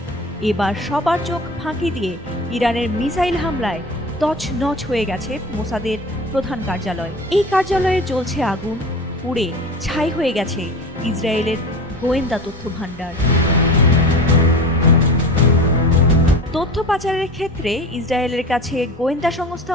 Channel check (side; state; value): both; normal; correlation 0.34